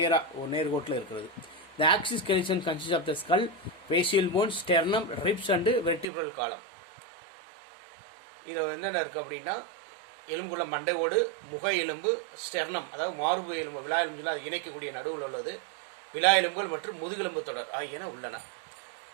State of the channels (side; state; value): left; drops out; at 6.1 s